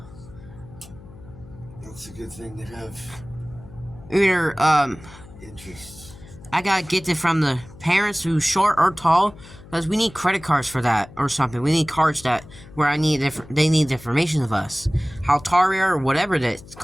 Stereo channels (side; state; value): left; noise; hum, 19 dB below the sound